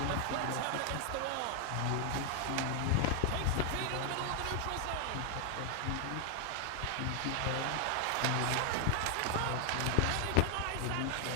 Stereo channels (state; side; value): different; both; correlation 0.00